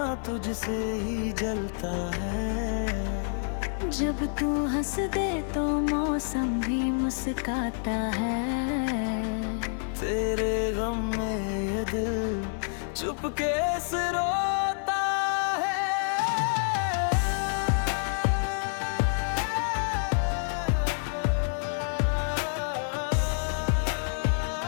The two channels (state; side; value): silent; right; digital silence